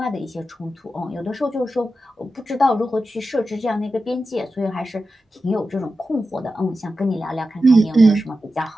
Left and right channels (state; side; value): normal; both; correlation 0.91